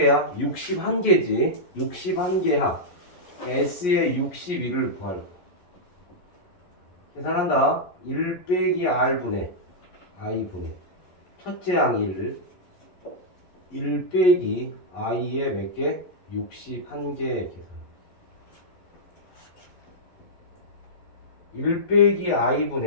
61개지. 61개 합. S의 61을 구할 거야. 계산한다. 1 빼기 R분의 I분의 첫째 항 1 빼기 I의 몇 개? 61개 계산. 1 빼기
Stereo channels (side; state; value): right; late; 11 ms